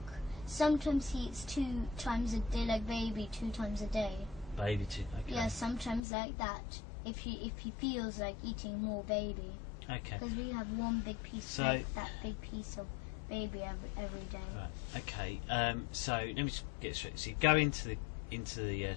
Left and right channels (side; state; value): right; drops out; at 6.0 s